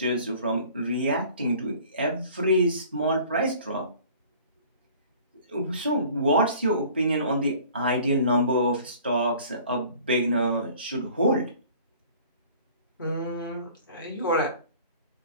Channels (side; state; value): both; inverted; correlation -0.49